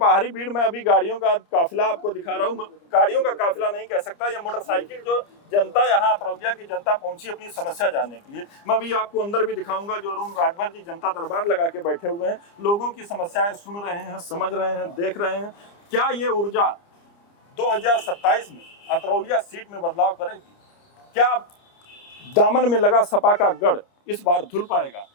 भीड़ में अभी गाड़ियों का काफिला आपको दिखा रहा हूँ। गाड़ियों का काफिला नहीं कह सकता, ये मोटरसाइकिल जो जनता यहाँ अतरौलिया की जनता पहुंची अपनी समस्या जानने के लिए। मैं अभी आपको अंदर भी दिखाऊंगा जो अरुण राजभर जी जनता दरबार लगा के बैठे हुए हैं, लोगों की समस्याएं सुन रहे हैं, समझ रहे हैं, देख रहे हैं। क्या ये ऊर्जा 2027 में अतरौलिया सीट में बदलाव करेगी? क्या दामन में लगा सपा का गढ़ इस बार धुल पाएगा?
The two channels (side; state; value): right; late; 29 ms